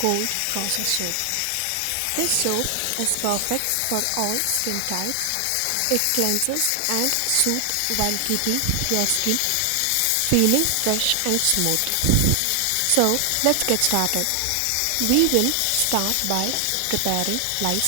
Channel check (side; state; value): both; different; correlation 0.00